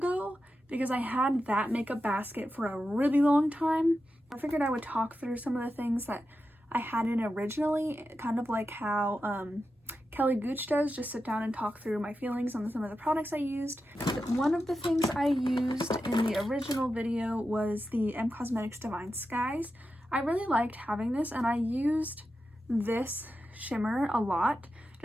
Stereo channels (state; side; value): normal; both; correlation 0.90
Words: because I had that makeup basket for a really long time. I figured I would talk through some of the things that I had in originally, kind of like how Kelly Gooch does, just sit down and talk through my feelings on some of the products I used. One of the things I used in the original video was the M Cosmetics Divine Skies. I really liked having this, and I used this shimmer a lot